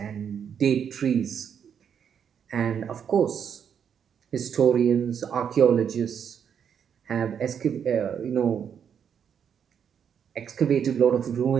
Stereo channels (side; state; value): left; quieter; 7.9 dB